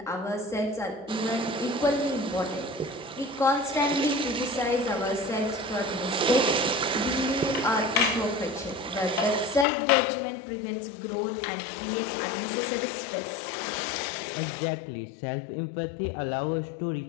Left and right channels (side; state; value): right; drops out; at 9.7 s